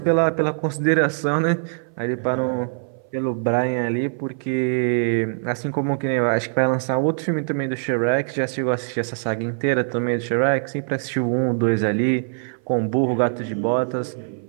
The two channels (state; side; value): silent; left; 58 dB below the other